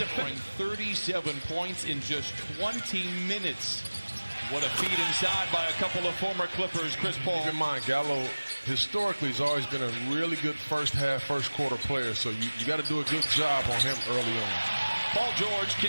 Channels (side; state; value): both; inverted; correlation -1.00